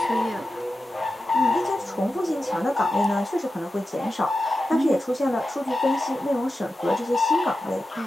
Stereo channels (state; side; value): normal; both; correlation 0.92